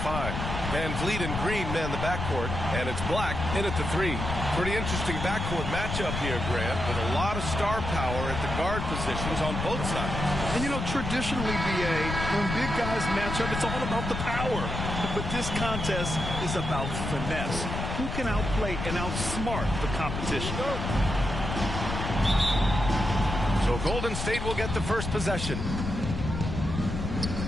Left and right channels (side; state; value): left; noise; rumble, 4 dB below the sound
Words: 5. VanVleet and Green man the backcourt. And it's Black in at the 3. Pretty interesting backcourt matchup here, Grant, with a lot of star power at the guard positions on both sides. And, you know, traditionally, B.A., when big guys match up, it's all about the power. But this contest is about finesse. Who can outplay and outsmart the competition? So Golden State will get the first possession.